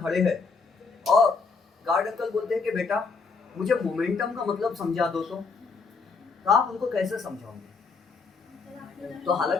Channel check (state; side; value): quieter; right; 4.6 dB